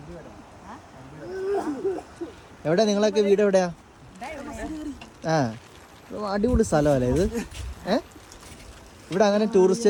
എവിടെ നിങ്ങളൊക്കെ വീട് എവിടെയാ? അടിപൊളി സ്ഥലമല്ലേ ഇത്? ഇവിടെ അങ്ങനെ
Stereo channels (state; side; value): identical; both; correlation 1.00